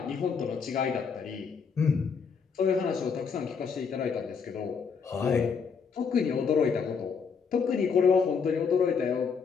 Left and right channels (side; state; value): right; quieter; 5.9 dB